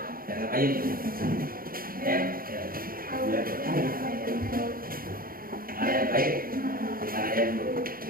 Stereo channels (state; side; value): late; left; 0.42 ms